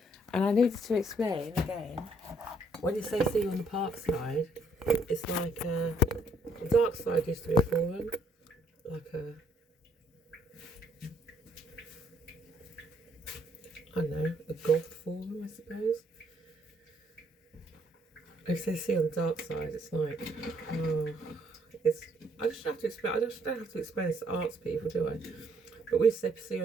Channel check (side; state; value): both; normal; correlation 0.67